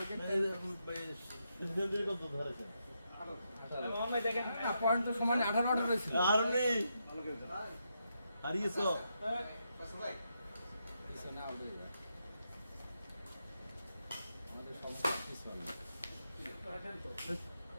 পয়েন্ট তো সমানে 18 রয়েছে। হারিয়েছ পিছনে আউট হয়ে যায় আমাদের সমস্যা পিছনে।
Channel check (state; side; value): inverted; both; correlation -0.82